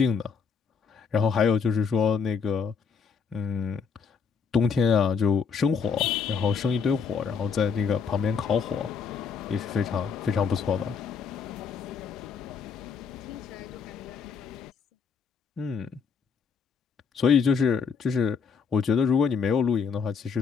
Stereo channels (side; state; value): right; quieter; 5.9 dB